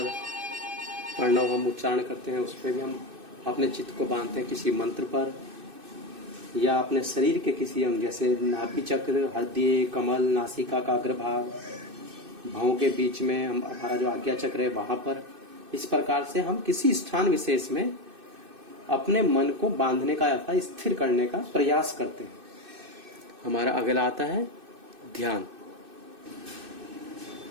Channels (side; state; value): left; late; 2.6 ms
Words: प्रणव हम उच्चारण करते हैं, उस पर भी हम अपने चित्त को बांधते हैं किसी मंत्र पर, या अपने शरीर के किसी अंग जैसे नाभि चक्र, हृदय, कमल, नासिका का अग्रभाग, भौं के बीच में हमारा जो आज्ञा चक्र है वहां पर। इस प्रकार से हम किसी स्थान विशेष में अपने मन को बांधने का अर्थात स्थिर करने का प्रयास करते हैं। हमारा अगला आता है ध्यान।